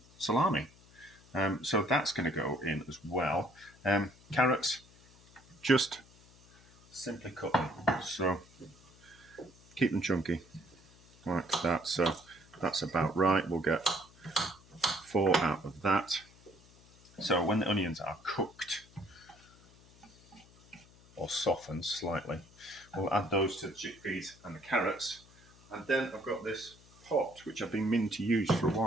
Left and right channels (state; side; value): noise; left; hum, 25 dB below the sound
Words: salami. So that's going to go in as well. Carrots, just simply cut them. So keep them chunky, like that. So that's about right. We'll get 4 out of that. So when the onions are cooked or softened slightly, we'll add those to the chickpeas and the carrots. And then I've got this pot, which I've been meaning to use for a